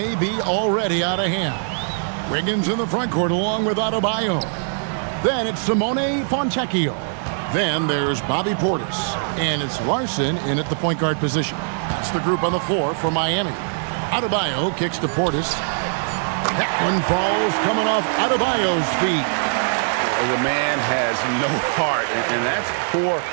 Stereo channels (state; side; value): silent; left; 62 dB below the other